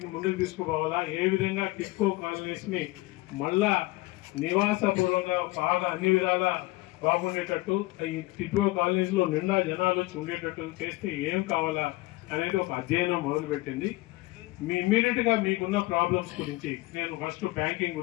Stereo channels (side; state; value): right; quieter; 20.7 dB